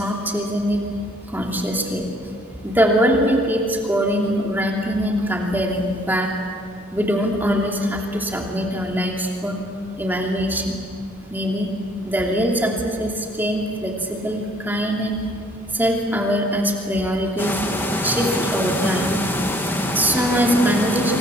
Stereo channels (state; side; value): normal; both; correlation 0.60